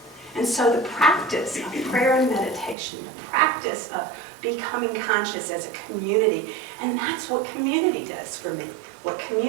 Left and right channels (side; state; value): left; drops out; at 2.8 s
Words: And so the practice of prayer and meditation, the practice of becoming conscious as a community, and that's what community does for me. What